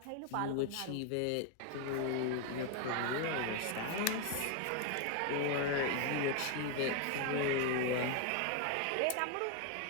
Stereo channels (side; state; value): both; different; correlation 0.01